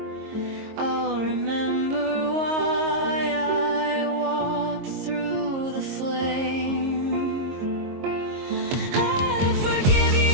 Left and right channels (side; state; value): left; late; 22 ms